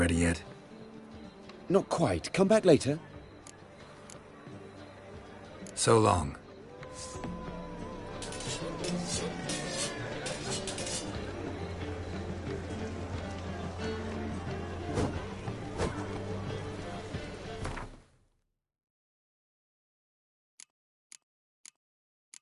yet? Not quite. Come back later. So long.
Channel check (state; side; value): identical; both; correlation 1.00